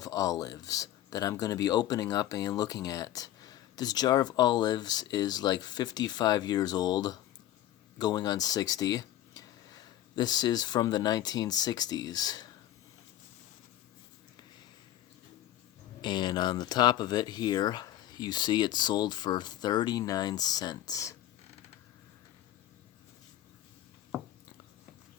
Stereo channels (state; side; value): quieter; right; 12.9 dB